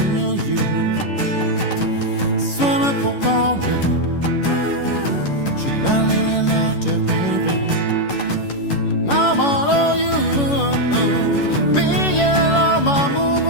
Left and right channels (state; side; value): late; right; 11 ms